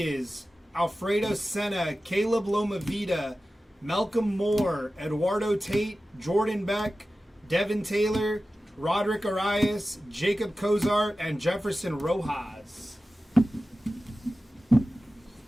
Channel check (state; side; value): normal; both; correlation 0.95